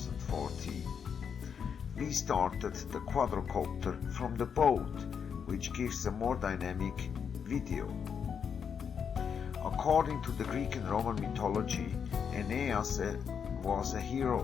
We started the quadrocopter from the boat, which gives a more dynamic video. According to the Greek and Roman mythology, Aeneas was a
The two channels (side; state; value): right; quieter; 7.0 dB